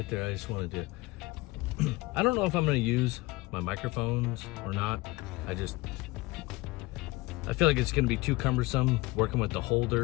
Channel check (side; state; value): right; quieter; 21.6 dB